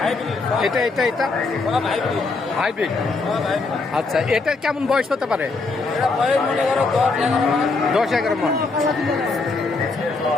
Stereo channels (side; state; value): right; quieter; 3.8 dB